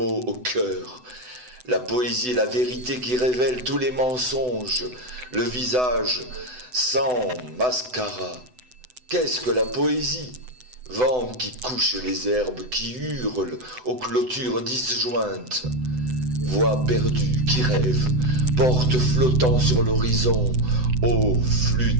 au cœur. La poésie est la vérité qui révèle tous les mensonges, le visage sans mascara. Qu'est-ce que la poésie? Vent qui couche les herbes, qui hurle aux clôtures disjointes. Voix perdue qui rêve, porte flottant sur l'horizon, ô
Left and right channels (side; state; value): left; late; 7.9 ms